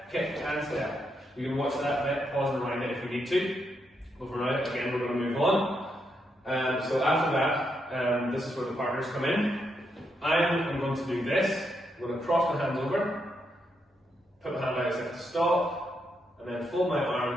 kick and step. You can watch that bit, pause and rewind it if we need to. But for now, again, we're going to move on. So after that, this is where the partners come in. I'm going to do this. I'm going to cross my hands over, put my hand out as if to stop, and then fold my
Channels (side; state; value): both; normal; correlation 0.80